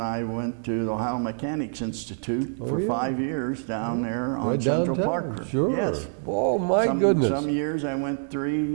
went to the Ohio Mechanics Institute for 5 years down there on Central Park. Sure. Yes. Oh, my goodness. Some years I went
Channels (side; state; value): left; silent; 61 dB below the other